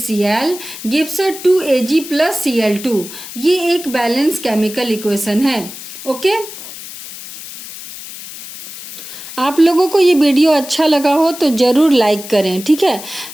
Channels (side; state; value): left; noise; hiss, 13 dB below the sound